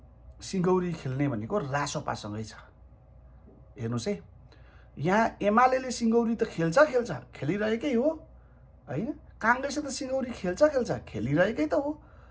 सिङ्गौरी खेल्ने भनेको रासोपासँगै छ। हेर्नुहोस् है, यहाँ एमाले सिङ्गौरी त खेलिरहेकै हो, होइन? काङ्ग्रेसले त सिङ्गौरी खेलिरहेकै त हो,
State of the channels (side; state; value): both; identical; correlation 1.00